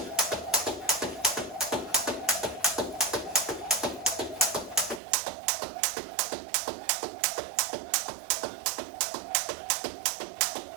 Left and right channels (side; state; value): left; drops out; at 5.0 s